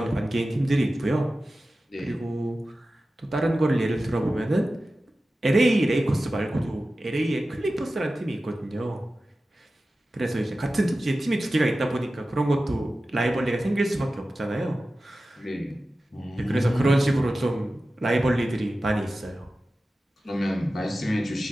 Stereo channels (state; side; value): normal; both; correlation 0.95